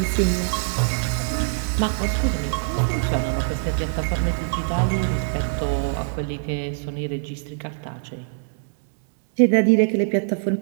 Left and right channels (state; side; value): silent; left; digital silence